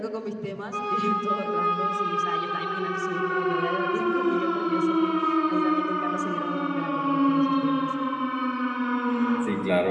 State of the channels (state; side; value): identical; both; correlation 1.00